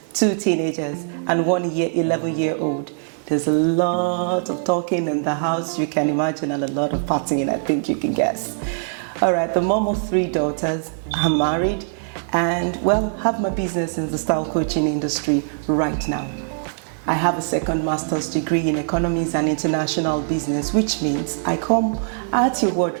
2 teenagers, and 1 11-year-old. There's a lot of talking in the house, you can imagine, and a lot of partying, I think you can guess. All right, the mom of 3 daughters, I'm married, and have my business in the style coaching industry right now. I have a second master's degree in economics and international business, which means I come at your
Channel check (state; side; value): silent; left; digital silence